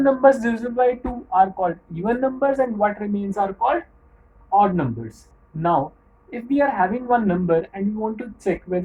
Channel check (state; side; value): identical; both; correlation 1.00